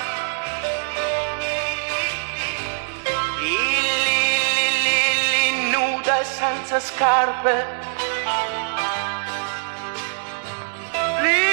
nuda e senza scarpe,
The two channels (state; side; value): silent; left; 64 dB below the other